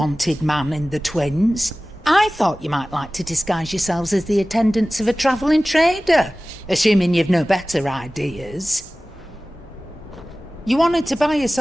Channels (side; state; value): both; normal; correlation 0.97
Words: man in the Twins? I thought you might like to disguise yourselves as the attendants of a travelling trader, assuming you've no better ideas. You wanted to buy